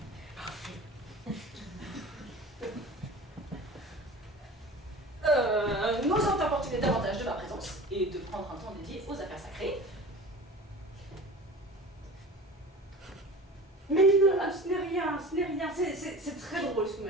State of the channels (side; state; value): both; normal; correlation 0.38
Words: N'osant importuner davantage de ma présence et de prendre un temps dédié aux affaires sacrées. Mais non, ce n'est rien, ce n'est rien. C'est très drôle ce que vous